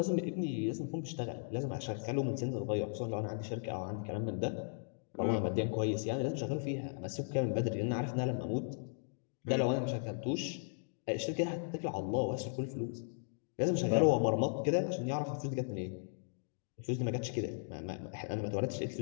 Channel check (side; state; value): right; silent; digital silence